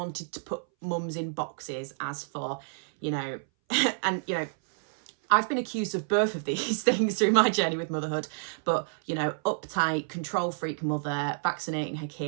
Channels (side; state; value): left; silent; 59 dB below the other